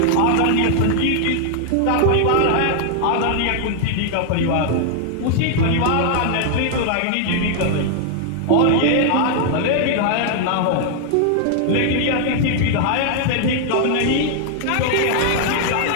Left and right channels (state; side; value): different; both; correlation 0.00